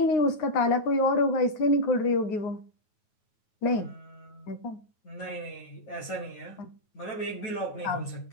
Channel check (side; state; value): right; late; 9.3 ms